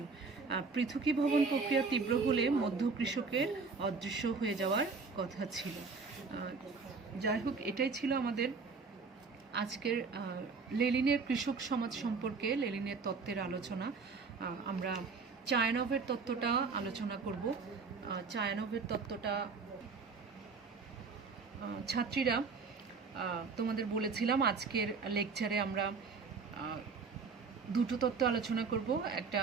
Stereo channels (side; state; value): left; quieter; 4.7 dB